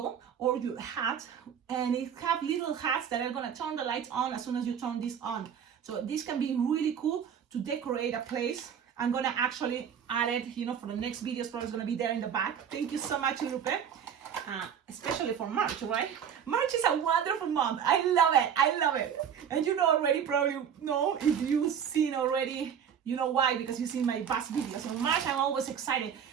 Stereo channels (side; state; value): left; quieter; 8.1 dB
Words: or your hat, and it have little hats that are going to turn the lights on as soon as you turn this on. So this can be really cool to decorate a place. I'm going to actually add it, you know, for the next videos. Probably going to be there in the back. Thank you so much, Lupe. especially for March, right? March is a wonderful month. I love it. I love it. And you know already, probably know, if you've seen already, you know why, because you've seen my past videos. In March, I'm always excited.